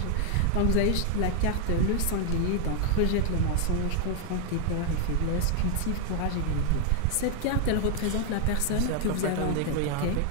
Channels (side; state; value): both; different; correlation 0.00